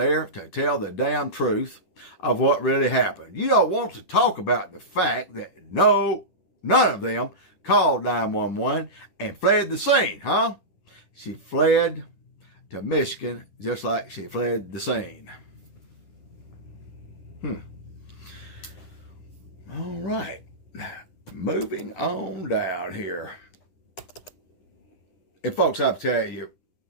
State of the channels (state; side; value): late; right; 10 ms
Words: to tell the damn truth of what really happened? You don't want to talk about the fact that none of them called 911 and fled the scene, huh? She fled to Michigan just like she fled the scene. All right. Moving on down here. And folks, I'll tell you,